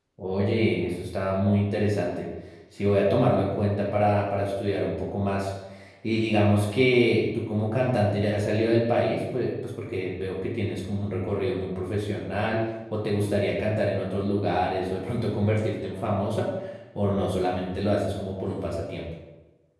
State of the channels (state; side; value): identical; both; correlation 1.00